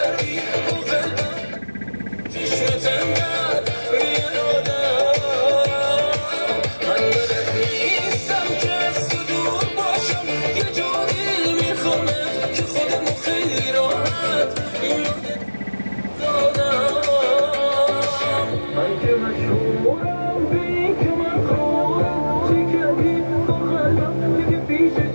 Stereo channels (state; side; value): inverted; both; correlation -1.00